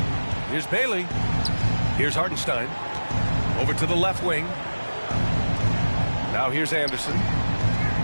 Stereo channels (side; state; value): both; inverted; correlation -1.00